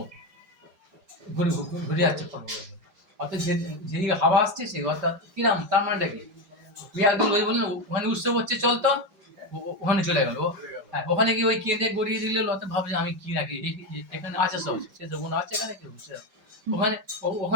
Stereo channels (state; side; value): late; left; 4.5 ms